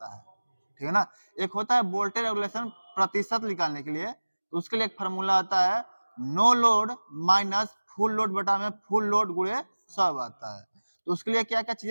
है। ठीक है ना। एक होता है वोल्टेज रेगुलेशन प्रतिशत निकालने के लिए, तो उसके लिए एक फार्मूला आता है, no load minus full load बटा में फुल लोड गुणे 100 आता है। तो उसके लिए क्या क्या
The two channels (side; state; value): both; inverted; correlation -1.00